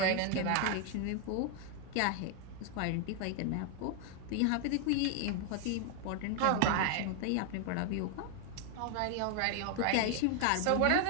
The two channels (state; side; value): different; both; correlation 0.00